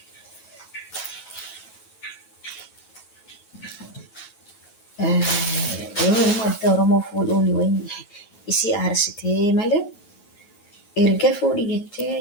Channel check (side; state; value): right; late; 9.2 ms